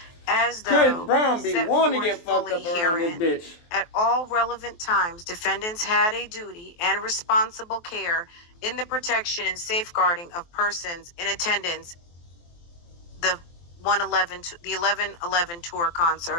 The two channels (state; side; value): late; right; 23 ms